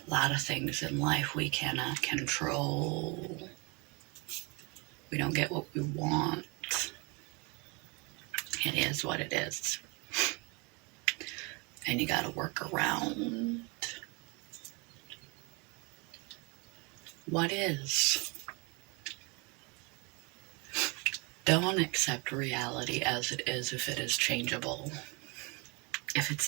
A lot of things in life we cannot control. We don't get what we want. It is what it is. And you gotta work around what is. Don't accept reality as it is if it is changeable. If it's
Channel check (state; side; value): quieter; left; 29.6 dB